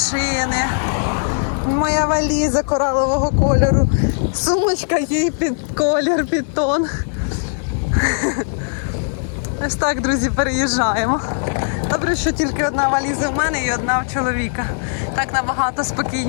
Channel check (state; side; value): silent; right; 67 dB below the other